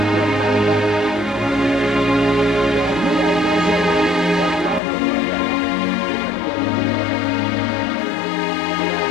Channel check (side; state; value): right; drops out; at 4.8 s